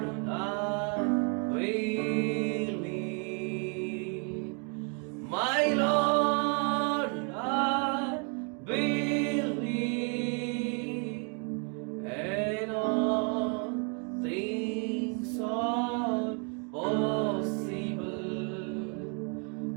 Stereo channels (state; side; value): quieter; left; 38.6 dB